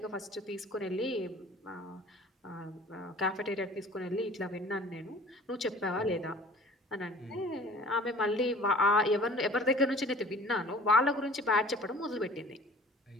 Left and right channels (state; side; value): normal; both; correlation 0.47